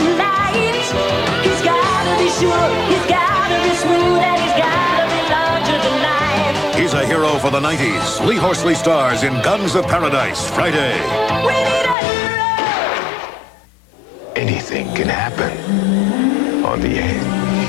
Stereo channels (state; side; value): drops out; right; at 12.0 s